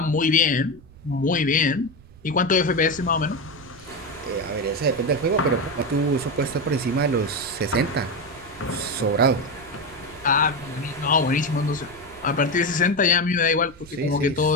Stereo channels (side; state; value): right; noise; rumble, 23 dB below the sound